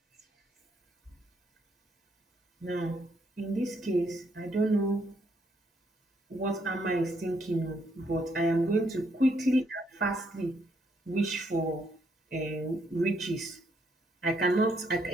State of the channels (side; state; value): both; normal; correlation 0.73